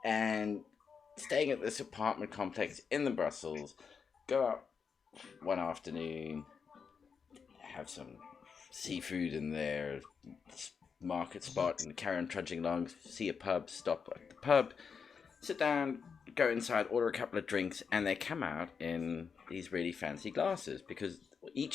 And staying at this apartment complex in the Brussels. Go out one afternoon, have some seafood in there, market spot, and carry on trudging along. See a pub, stop at the pub, sit down, go inside, order a couple of drinks, and they come out in these really fancy glasses because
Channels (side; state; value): right; quieter; 6.0 dB